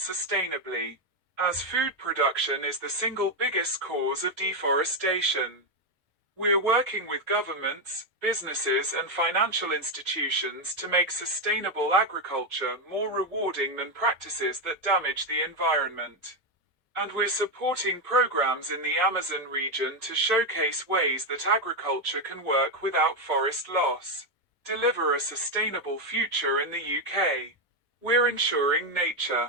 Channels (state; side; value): normal; both; correlation 0.06